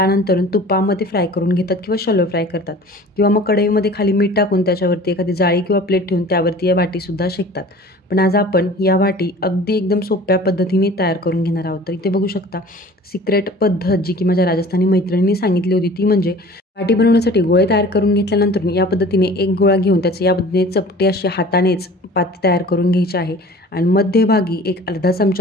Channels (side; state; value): both; normal; correlation 0.44